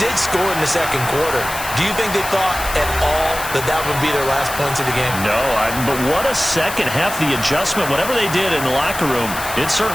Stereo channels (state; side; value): noise; left; hiss, 9 dB below the sound